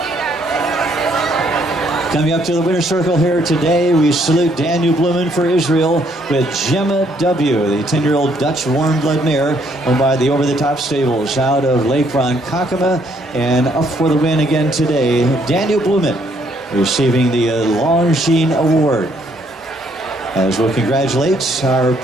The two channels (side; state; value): both; normal; correlation 0.68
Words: Coming up to the winner's circle here today, we salute Daniel Bluman for Israel with Gemma W., the 10-year-old Dutch warm blood mare owned by the over-the-top stables out of Lake Ronkonkoma. And up for the win again today, Daniel Bluman, receiving the Longines Award. As we'll congratulate our